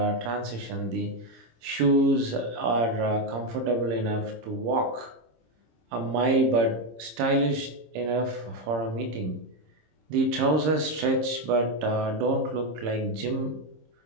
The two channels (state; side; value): late; left; 26 ms